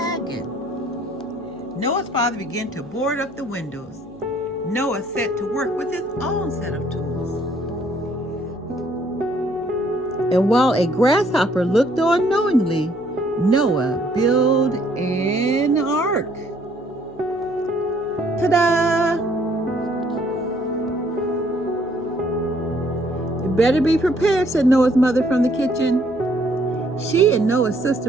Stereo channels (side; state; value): left; noise; hum, 29 dB below the sound